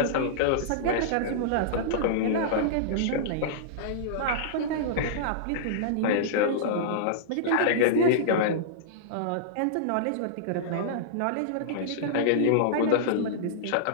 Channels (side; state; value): both; different; correlation -0.02